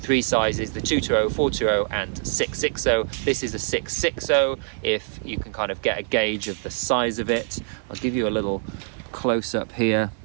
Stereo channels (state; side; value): silent; left; digital silence